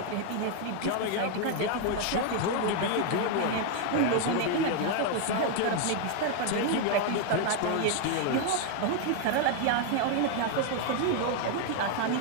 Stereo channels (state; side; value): different; both; correlation 0.00